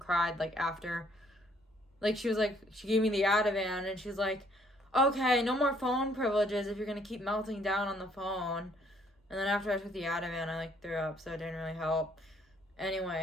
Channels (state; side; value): normal; both; correlation 0.65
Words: like after, like she gave me the Ativan, and she's like, okay, no more phone privileges if you're gonna keep melting down on the phone. And then after I took the Ativan, I like threw up, so it didn't really help.